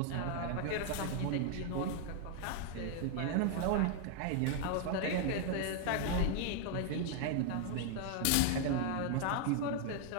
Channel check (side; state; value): both; different; correlation 0.00